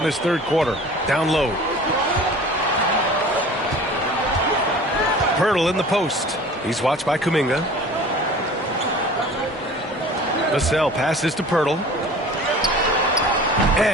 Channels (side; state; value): both; normal; correlation 0.43